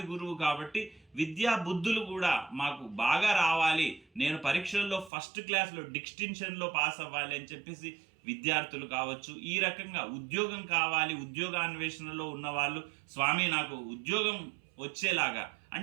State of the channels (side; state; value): left; drops out; at 5.1 s